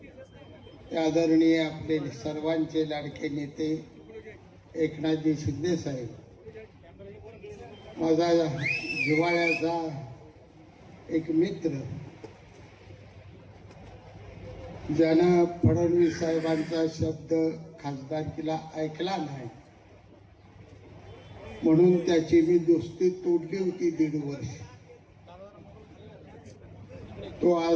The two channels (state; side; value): identical; both; correlation 1.00